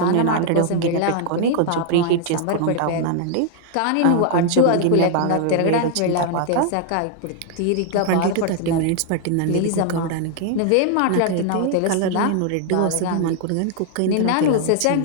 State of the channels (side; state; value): both; different; correlation 0.00